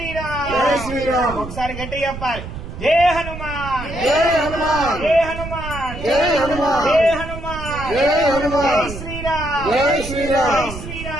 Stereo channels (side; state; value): right; noise; rumble, 9 dB below the sound